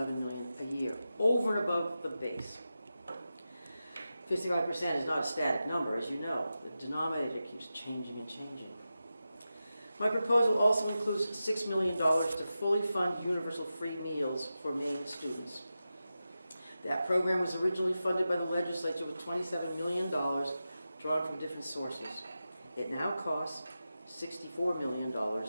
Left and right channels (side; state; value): both; inverted; correlation -0.92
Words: a year, over and above the base. 55% is not a static number, as you know. The denominator keeps changing and changing. My proposal also includes $6 million to fully fund universal free meals for Maine students. That program was originally funded by the legislature with $27 million drawn from different sources. It now costs $64 million